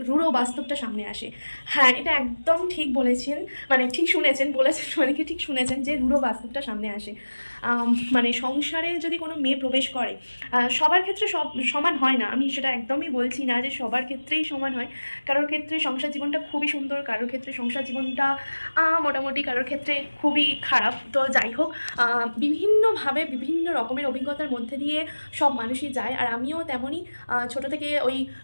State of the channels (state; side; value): inverted; both; correlation -1.00